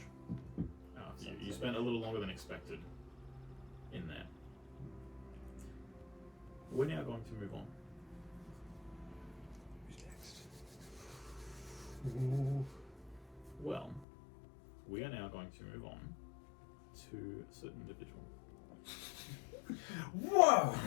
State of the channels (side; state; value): right; drops out; at 14.1 s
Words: You spent a little longer than expected in there. We're now going to move on. Who's next? Well, we are now going to move on to a certain individual. Whoa!